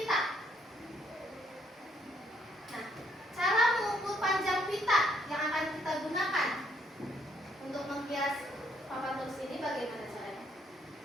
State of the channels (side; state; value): both; normal; correlation 0.70